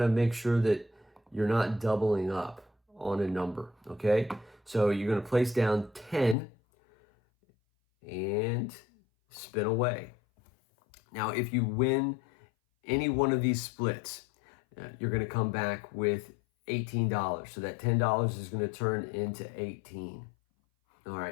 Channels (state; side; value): drops out; right; at 6.4 s